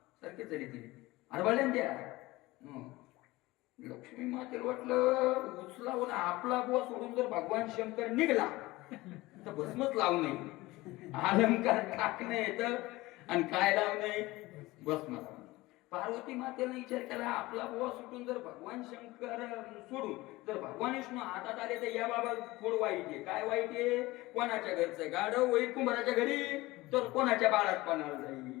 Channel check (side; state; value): right; quieter; 19.8 dB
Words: सारखेच झाली तिने हरवाळ्यान द्या. लक्ष्मी मातेला वाटलं उचलावून आपला बुवा सोडून जर भगवान शंकर निघला तर भस्मच लावू नये. अलंकार टाकणं येतं आणि काय लावू नये भस्म लावू. पार्वती मातेने विचार केला आपला बुवा सुटून जर भगवान शंकर सोडून जर भगवान विष्णू हातात आले तर या बाबा थोडं वाईट आहे. काय वाईट आहे? कोणाच्या घरचं गाढव होईल कुंभाराच्या घरी तर कोणाच्या बाळात पणाला